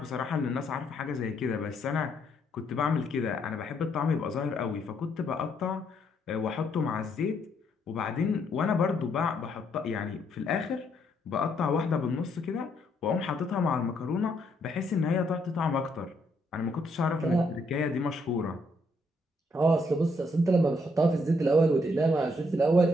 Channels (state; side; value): normal; both; correlation 0.72